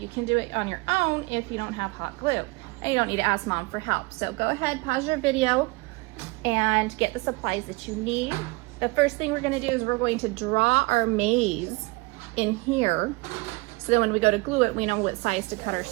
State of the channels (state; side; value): quieter; left; 25.5 dB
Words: can do it on your own if you don't have hot glue. And you don't need to ask mom for help. So go ahead, pause your video, and get the supplies that you need. The first thing we're gonna do is we're going to draw our maze in here, so that when we go to glue it, we know what size to cut our